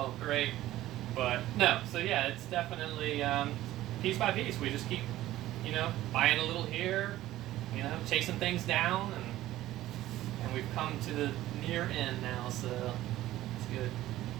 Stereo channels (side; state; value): left; quieter; 15.0 dB